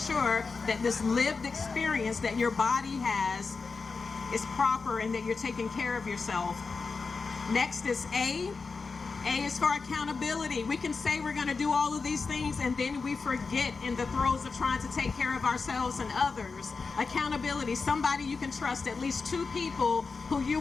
that this lived experience that your body has is proper and that you're taking care of yourself. Next is A. A is for accountability. We can say we're going to do all of these things and then we forget in the throes of trying to take care of ourselves and others. Accountability, somebody you can trust, at least 2 people who you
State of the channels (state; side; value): quieter; right; 4.6 dB